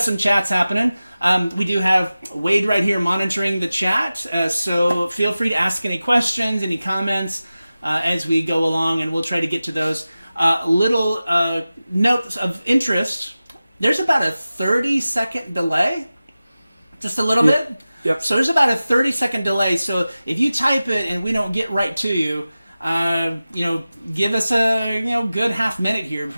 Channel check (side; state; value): both; inverted; correlation -0.95